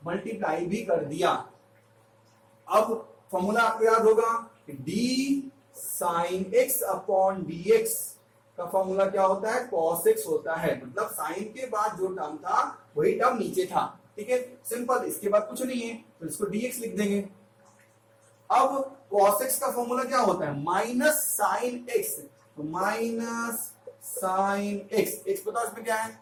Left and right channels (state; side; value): identical; both; correlation 1.00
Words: मल्टीप्लाई भी कर दिया। अब फॉर्मूला आपको याद होगा कि d sin x upon dx का फॉर्मूला क्या होता है, cos x होता है, मतलब साइन के बाद जो टर्म था वही टर्म नीचे था, ठीक है, सिंपल, इसके बाद कुछ नहीं है, तो इसको dx लिख देंगे। अब cos x का फॉर्मूला क्या होता है, माइनस साइन x, तो माइनस साइन x, x बताओ इसमें क्या है,